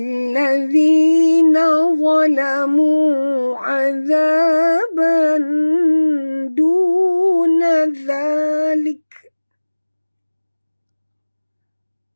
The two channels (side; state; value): both; inverted; correlation -1.00